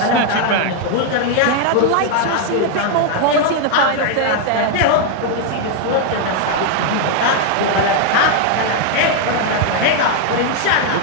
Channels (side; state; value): both; different; correlation 0.00